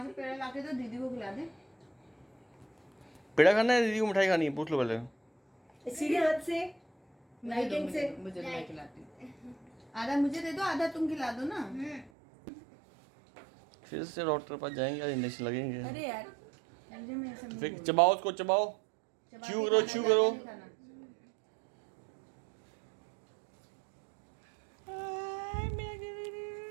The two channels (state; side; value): drops out; left; at 12.1 s